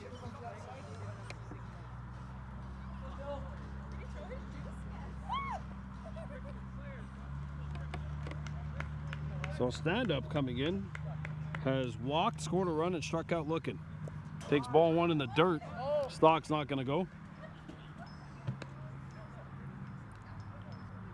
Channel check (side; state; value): both; identical; correlation 1.00